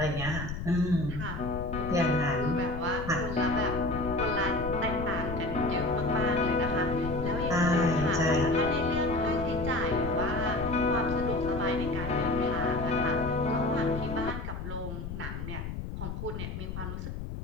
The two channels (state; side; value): noise; left; rumble, 6 dB below the sound